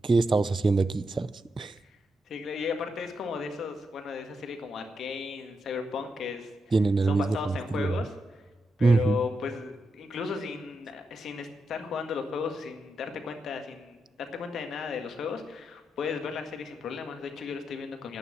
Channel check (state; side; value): normal; both; correlation 0.85